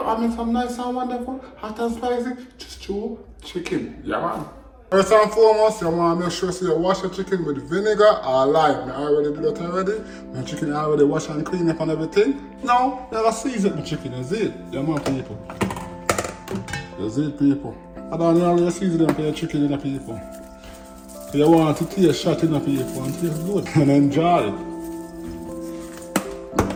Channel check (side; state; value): both; identical; correlation 1.00